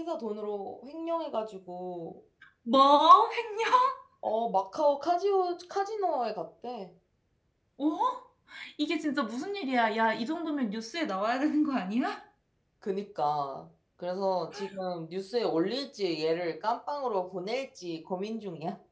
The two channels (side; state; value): both; identical; correlation 1.00